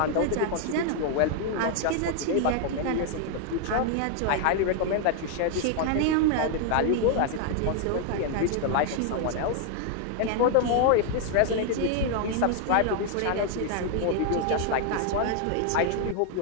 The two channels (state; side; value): different; both; correlation 0.00